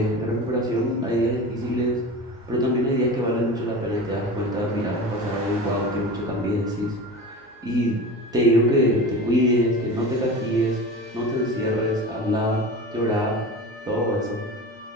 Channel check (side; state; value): both; normal; correlation 0.31